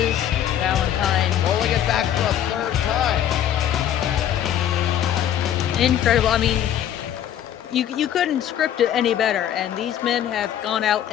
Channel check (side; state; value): right; quieter; 10.5 dB